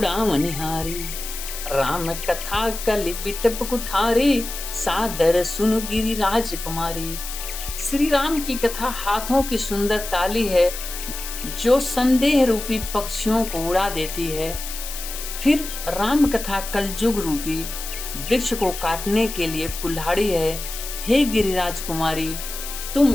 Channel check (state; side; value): noise; left; hiss, 8 dB below the sound